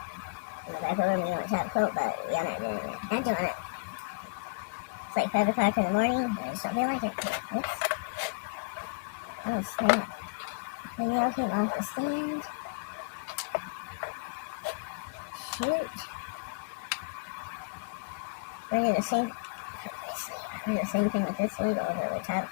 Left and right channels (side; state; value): right; quieter; 32.5 dB